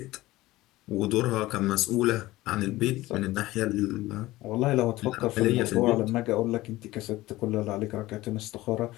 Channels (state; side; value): quieter; right; 17.9 dB